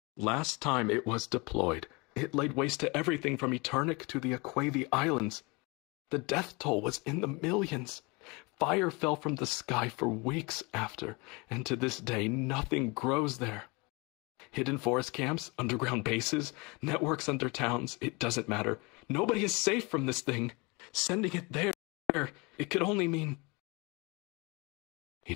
Last time it was deployed, it laid waste to everything from Eternic to the Aquavi Islands. The death toll was in the millions. Fire fell from the sky for weeks after, and to this day nothing grows there. Hidden forest camps, underground bases, networks under towns, it doesn't matter. Nobody is safe from this thing. Sending it there, it could only mean... He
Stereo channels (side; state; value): right; quieter; 27.6 dB